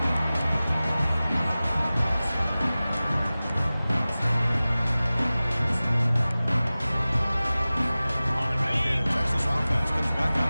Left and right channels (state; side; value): inverted; both; correlation -0.97